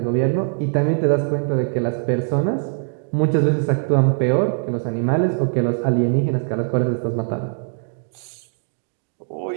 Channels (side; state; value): left; silent; digital silence